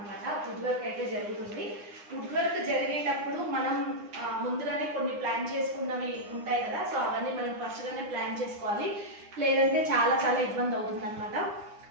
వుడ్ వర్క్ అయితే జరుగుతుంది. వుడ్ వర్క్ జరిగేటప్పుడు మనం ముందుగానే కొన్ని ప్లాన్ చేసుకున్నవి ఉంటాయి కదా, సో అవన్నీ మనం ఫస్ట్గానే ప్లాన్ చేసుకోవాలి, లేదంటే చాలా చాలా ఇబ్బంది అవుతుంది అనమాట.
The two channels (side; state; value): left; late; 9.8 ms